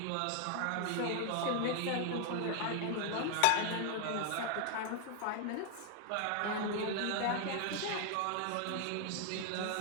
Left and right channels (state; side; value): different; both; correlation 0.00